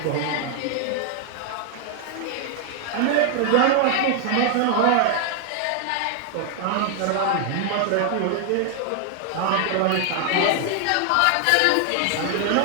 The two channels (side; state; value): both; different; correlation 0.00